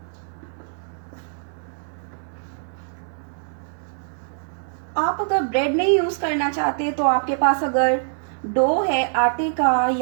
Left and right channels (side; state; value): left; silent; digital silence